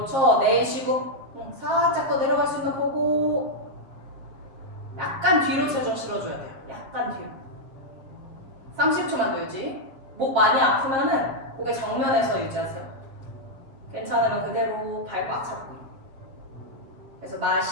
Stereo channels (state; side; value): late; left; 7.5 ms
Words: 내쉬고 살짝 더 내려갈 수 있나 보고 약간 뒤로 체중 실어줘야 돼요. 약간 뒤로. 30초만 더 유지. 목 많이 아프면은 고개 정면에서 유지하세요. 괜찮으면 그대로 발 꽉 잡고. 그래서